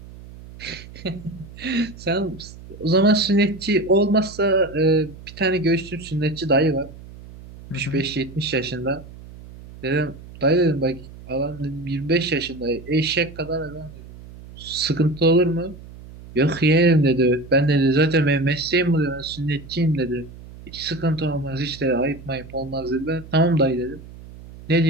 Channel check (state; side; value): noise; right; hum, 17 dB below the sound